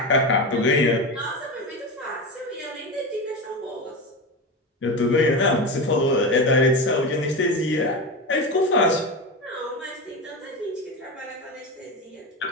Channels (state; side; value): normal; both; correlation 0.21